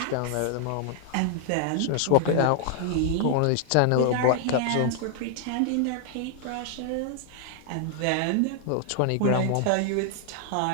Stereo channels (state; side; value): different; both; correlation 0.00